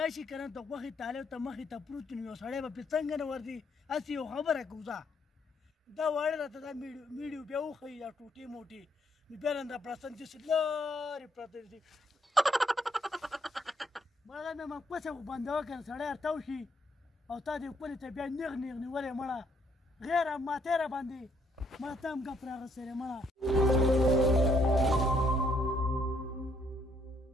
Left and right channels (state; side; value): normal; both; correlation 0.70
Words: که نه د غوښې تالیو ته مخې ته پروت وي نو یو سړی به پرې څنګه نه ورځي هسې یو خبره کوو زه دا واړه راته دا میډیو بیا وښیي دا ټوټې موټې نو بیا رانه راپړسن داسې لارې پرته دي مړه مې مکپسه خو بندوه که نه سړی ارتاو شي او تا دې خپلې ته بیا نیغ نیغ نیولې مړه غیره ماتې را باندې مړه ته هم ګپ راغستی دی مړه